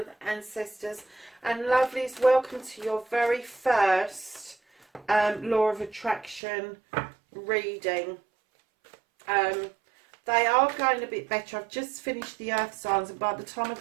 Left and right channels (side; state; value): left; drops out; at 6.4 s